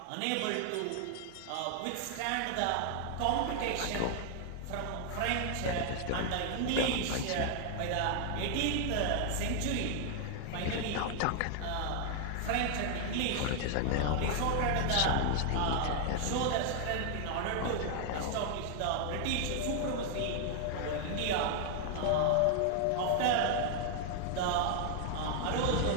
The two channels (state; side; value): different; both; correlation 0.00